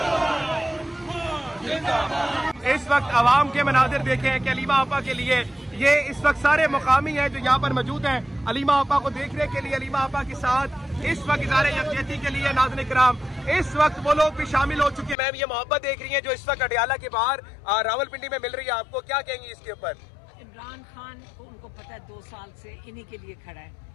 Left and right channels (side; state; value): right; drops out; at 15.2 s